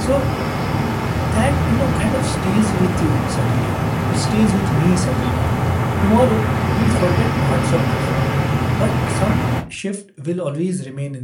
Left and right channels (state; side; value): identical; both; correlation 1.00